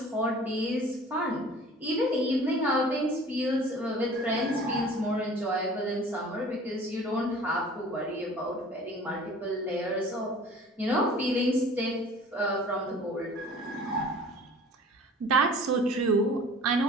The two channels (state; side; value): normal; both; correlation 0.46